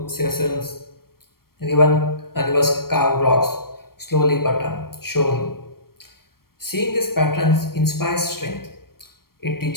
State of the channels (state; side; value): late; right; 0.93 ms